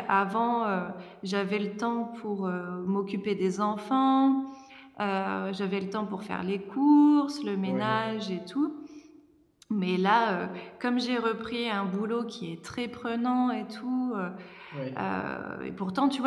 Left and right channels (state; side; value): identical; both; correlation 1.00